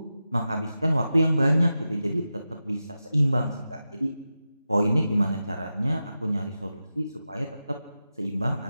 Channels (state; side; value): inverted; both; correlation -0.91